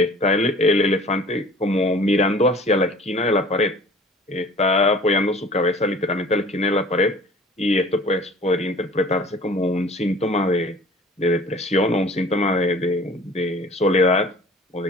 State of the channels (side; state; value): both; normal; correlation 0.47